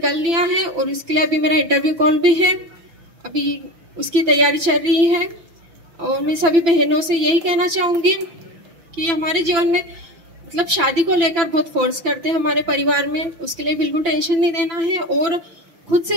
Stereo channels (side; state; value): left; late; 5.9 ms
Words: लिया है और इसके लिए अभी मेरा इंटरव्यू कॉल भी है, अभी उसकी तैयारी चल रही है। और मैं सभी बहनों से यही कहना चाहूंगी कि हमारे जीवन में मतलब शादी को लेकर बहुत फोर्स करते हैं हमारे परिवार में, उसके लिए बिल्कुल टेंशन नहीं देना है और खुद से